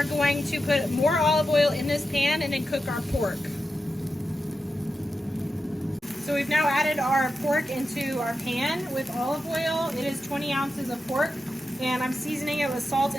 going to put more olive oil in this pan and then cook our pork. So we've now added our pork into our pan with olive oil. It is 20 ounces of pork, and I'm seasoning it with salt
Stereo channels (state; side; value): normal; both; correlation 0.89